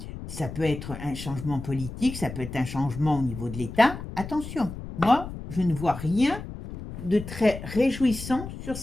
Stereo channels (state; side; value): noise; left; rumble, 10 dB below the sound